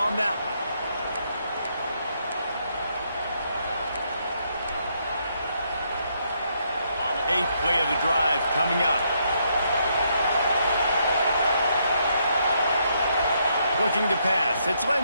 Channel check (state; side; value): inverted; both; correlation -0.75